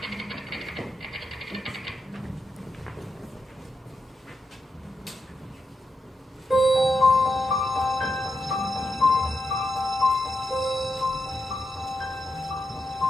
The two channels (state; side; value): normal; both; correlation 0.85